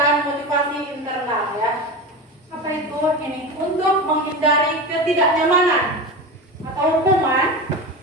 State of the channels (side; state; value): both; normal; correlation 0.25